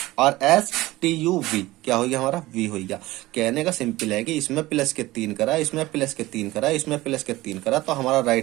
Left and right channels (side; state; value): left; quieter; 18.3 dB